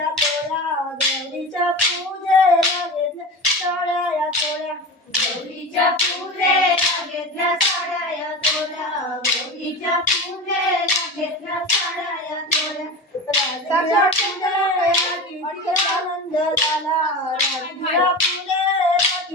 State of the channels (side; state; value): both; normal; correlation 0.28